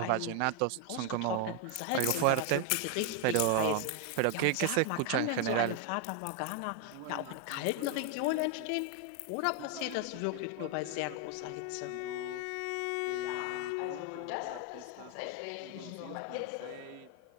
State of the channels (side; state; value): both; different; correlation 0.00